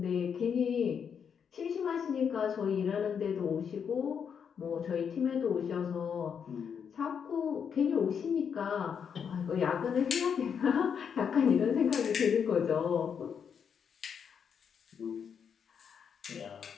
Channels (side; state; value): right; quieter; 7.2 dB